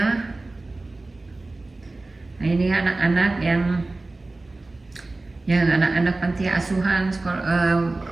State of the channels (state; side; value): quieter; left; 3.1 dB